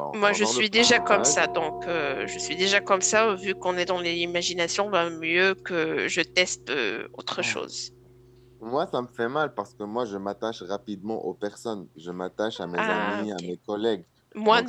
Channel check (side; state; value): both; identical; correlation 1.00